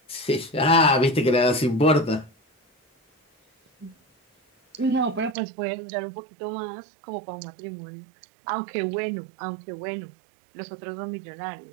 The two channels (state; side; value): drops out; left; at 5.4 s